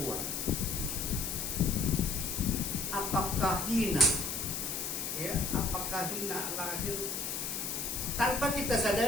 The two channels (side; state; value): left; noise; hiss, 3 dB below the sound